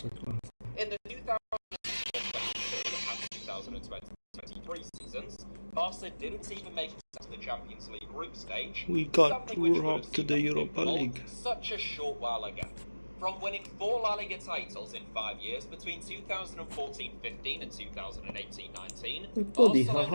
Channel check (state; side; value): inverted; both; correlation -1.00